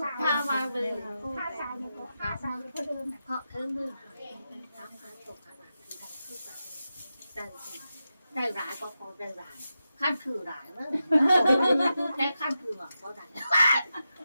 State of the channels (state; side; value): inverted; both; correlation -0.90